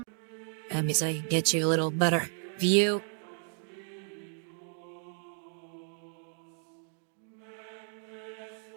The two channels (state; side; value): silent; left; 55 dB below the other